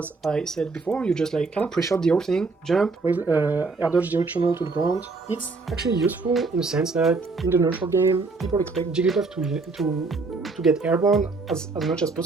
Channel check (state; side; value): quieter; left; 3.9 dB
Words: I said before, you just like kind of pre-shot the whole thing, jump, air dodge directional to the ground. It's actually useful in the sense that in the neutral game, people expect Jigglypuff to get airborne as much as